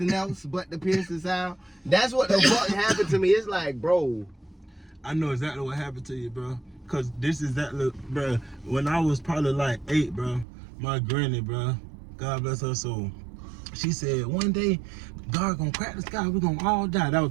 else but the piercing sound. That's what the fuck happened to me. It's like, bro, I know exactly what happened to you, bro. Cause this is that look, bro. When I was probably like 8, bro, my granny, bro, God bless her soul, she said one day God gonna crack the sky, we're gonna all die. That was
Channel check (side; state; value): left; drops out; at 10.5 s